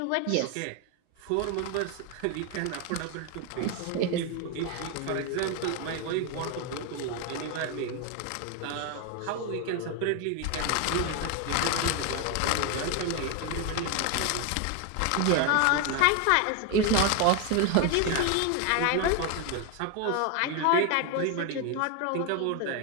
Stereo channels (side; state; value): both; different; correlation 0.01